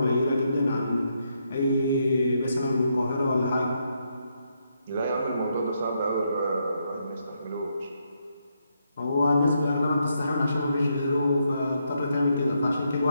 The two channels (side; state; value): both; inverted; correlation -0.79